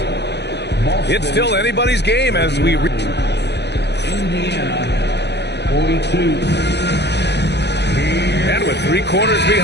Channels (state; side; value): late; right; 0.50 ms